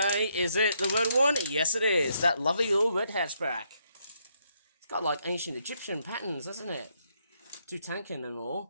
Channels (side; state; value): both; inverted; correlation -0.75